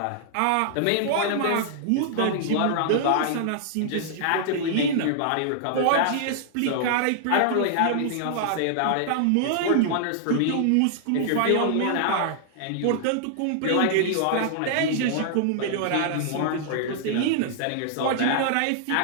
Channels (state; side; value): different; both; correlation -0.01